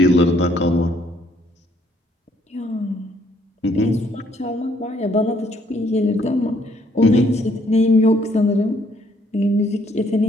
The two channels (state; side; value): normal; both; correlation 0.66